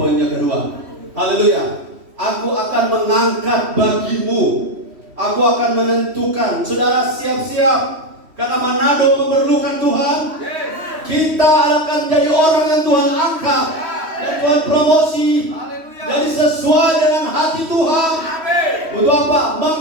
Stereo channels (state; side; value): late; left; 3.1 ms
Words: yang kedua. Haleluya. Aku akan mengangkat bagimu. Aku akan menentukan. Saudara, siap-siap, karena Manado memerlukan Tuhan. Kita akan jadi orang yang Tuhan angkat dan Tuhan promosi. Jadi sesuai dengan hati Tuhan. Untuk apa?